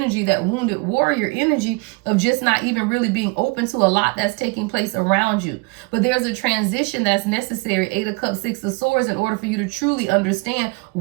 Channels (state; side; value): quieter; left; 28.5 dB